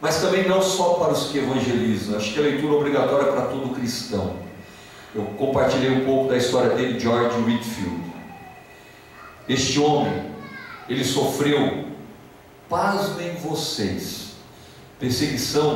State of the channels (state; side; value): identical; both; correlation 1.00